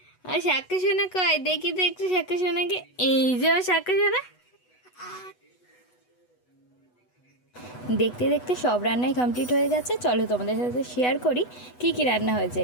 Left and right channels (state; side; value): late; right; 8.1 ms